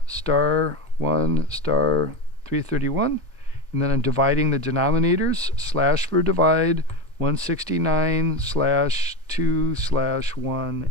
star 331, and then I'm dividing the denominators, slash for divide,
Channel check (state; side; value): normal; both; correlation 0.19